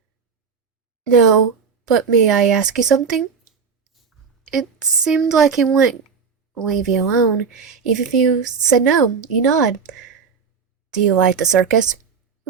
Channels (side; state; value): left; quieter; 5.9 dB